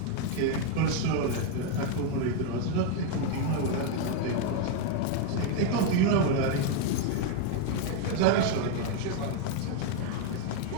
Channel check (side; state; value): both; different; correlation 0.01